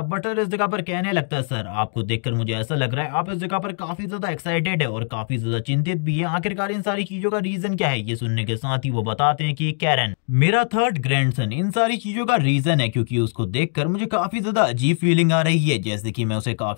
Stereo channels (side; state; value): right; silent; 64 dB below the other